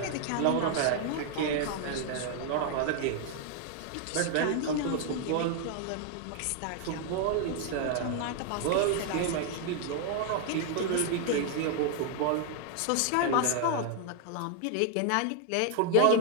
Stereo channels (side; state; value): both; different; correlation 0.00